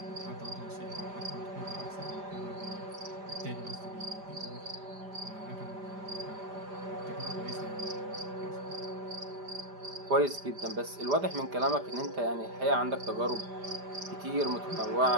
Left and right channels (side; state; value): left; late; 5.0 ms